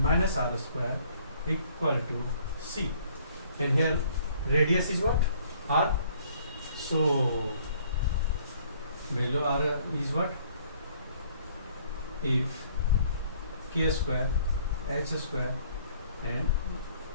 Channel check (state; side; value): inverted; both; correlation -0.60